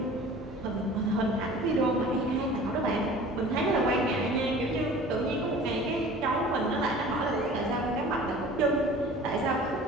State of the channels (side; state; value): both; normal; correlation 0.44